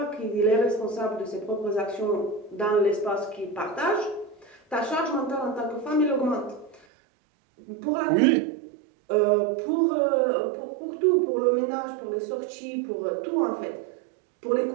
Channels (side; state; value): left; drops out; at 6.9 s